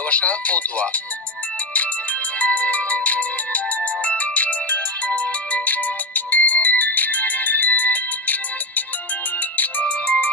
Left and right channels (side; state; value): both; normal; correlation 0.14